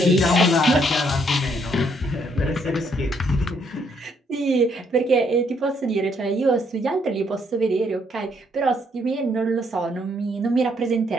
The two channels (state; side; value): normal; both; correlation 0.70